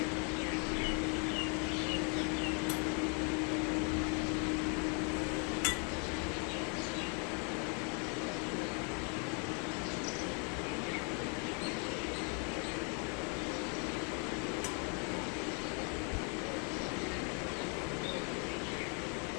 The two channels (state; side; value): quieter; right; 37.6 dB